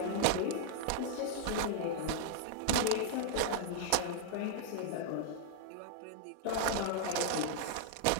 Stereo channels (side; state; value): both; different; correlation 0.00